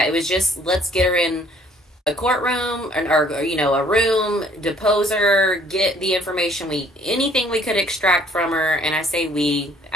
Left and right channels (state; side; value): normal; both; correlation 0.59